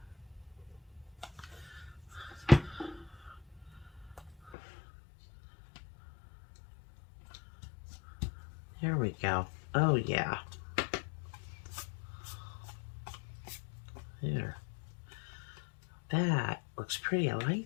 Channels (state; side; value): drops out; right; at 4.5 s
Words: There we go. Oh yeah. There. That looks pretty. I like